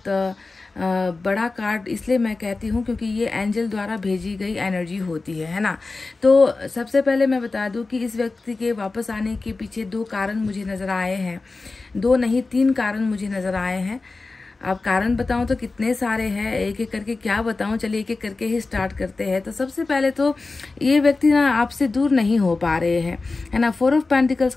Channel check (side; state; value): right; quieter; 3.6 dB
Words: बड़ा कार्ड इसलिए मैं कहती हूँ क्योंकि ये एंजल द्वारा भेजी गई एनर्जी होती है ना। तो सबसे पहले मैं बता दूँ कि इस व्यक्ति के वापस आने के पीछे 2 कारण मुझे नज़र आए हैं, 2 नहीं 3 कारण मुझे नज़र आए हैं। अब कारण बताऊं तो कितने सारे हैं, एक एक करके क्या बताऊं, चलिए एक एक करके ही स्टार्ट करते हैं। तो सबसे पहले तो ये व्यक्ति ना आपसे दूर नहीं हो पा रहे हैं, है ना। 4 ऑफ पेंटिकल्स